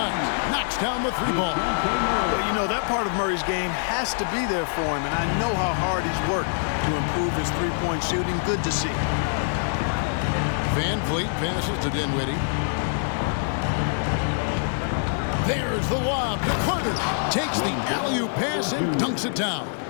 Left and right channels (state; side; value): silent; right; 62 dB below the other